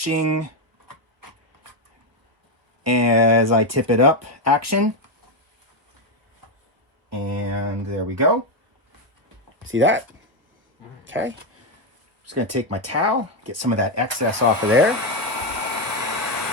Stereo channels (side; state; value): left; late; 1.3 ms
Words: as I tip it up action. And there we go. See that? Okay. Just going to take my towel, get some of that excess off of there.